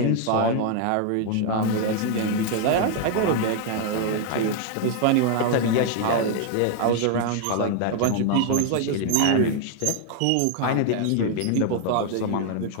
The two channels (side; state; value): both; different; correlation 0.00